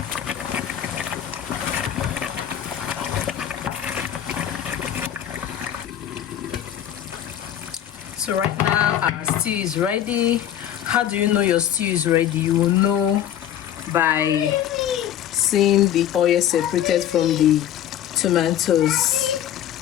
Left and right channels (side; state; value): right; quieter; 10.8 dB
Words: So right now our stew is ready. How do you know your stew is ready? You will know by seeing the oil separated from the tomatoes.